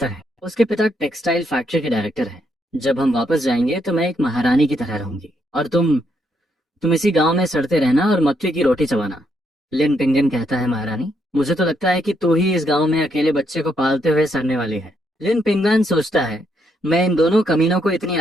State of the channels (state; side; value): normal; both; correlation 0.76